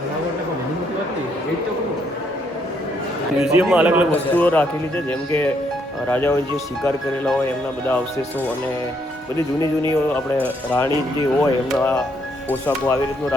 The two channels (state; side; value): normal; both; correlation 0.72